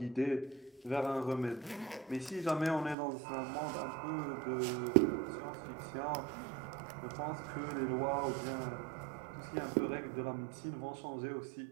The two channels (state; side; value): drops out; left; at 3.0 s